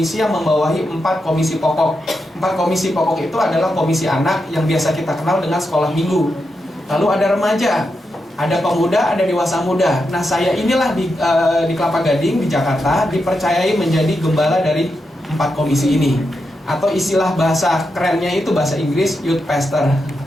yang membawahi 4 komisi pokok. 4 komisi pokok itu adalah komisi anak yang biasa kita kenal dengan sekolah minggu. Lalu ada remaja, ada pemuda, ada dewasa muda. Nah, saya inilah di Kelapa Gading, di Jakarta, dipercayai menjadi gembala dari 4 komisi ini. Atau istilah bahasa kerennya itu bahasa Inggris, youth pastor.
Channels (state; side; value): normal; both; correlation 0.86